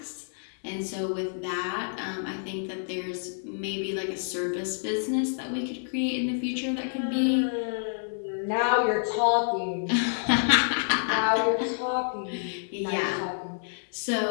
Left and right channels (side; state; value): right; silent; digital silence